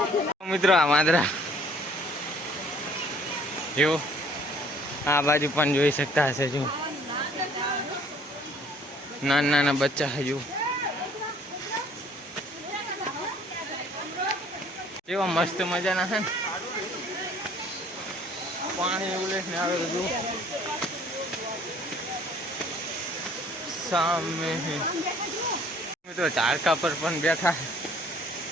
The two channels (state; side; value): normal; both; correlation 0.57